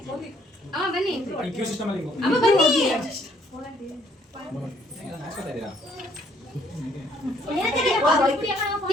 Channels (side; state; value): both; normal; correlation 0.65